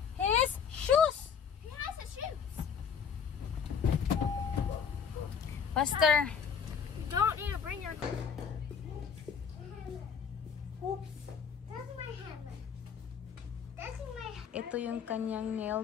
His shoes! He has his shoes. Faster. You don't need to bring your... Oops. That's my hammer. That's my hammer. Ito yung kanyang nail,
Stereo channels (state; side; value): quieter; right; 6.8 dB